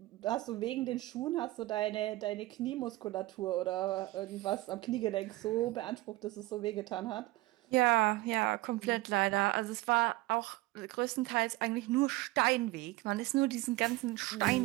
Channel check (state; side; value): quieter; left; 19.4 dB